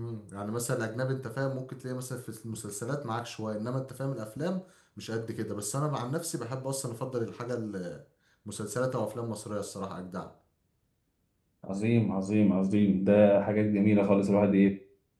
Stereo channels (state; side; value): identical; both; correlation 1.00